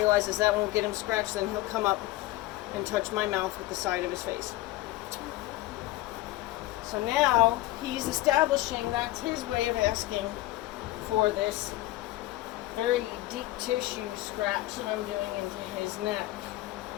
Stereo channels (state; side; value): quieter; right; 17.1 dB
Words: that won't get him scratched. Then he'll come up and touch my mouth with the side of his face. So now he's establishing that's his way of asking for this very deep tissue scratch that I'm doing into his neck.